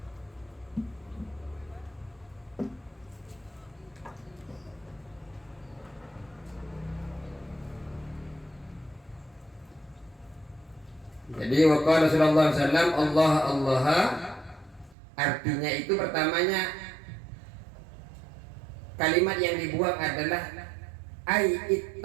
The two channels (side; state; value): left; drops out; at 15.0 s